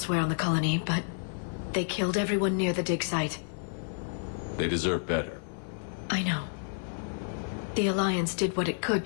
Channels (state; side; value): silent; right; digital silence